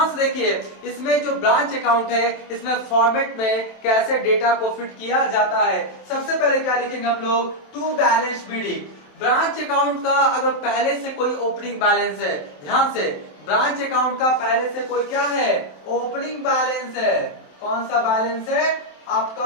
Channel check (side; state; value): right; late; 27 ms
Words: से देखिए, इसमें जो ब्रांच अकाउंट है इसमें फॉर्मेट में कैसे डेटा को फिट किया जाता है। सबसे पहले क्या लिखेंगे हम लोग? To balance BD. Branch account का अगर पहले से कोई ओपनिंग बैलेंस है, ध्यान से, ब्रांच अकाउंट का पहले से कोई क्या है? ओपनिंग बैलेंस है। कौन सा बैलेंस है?